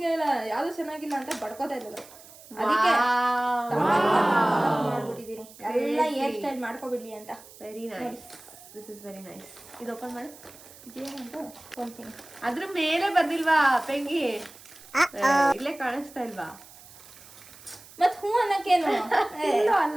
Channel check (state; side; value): noise; right; hiss, 20 dB below the sound